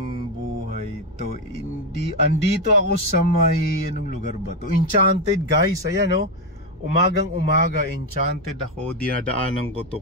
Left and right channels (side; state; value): both; normal; correlation 0.08